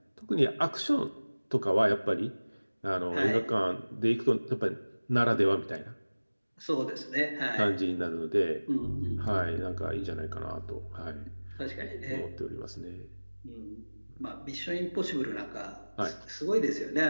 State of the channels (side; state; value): both; inverted; correlation -1.00